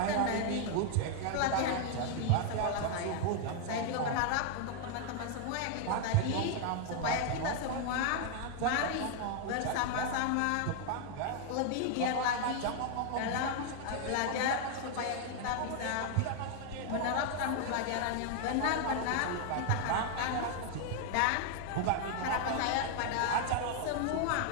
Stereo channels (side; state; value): both; different; correlation 0.00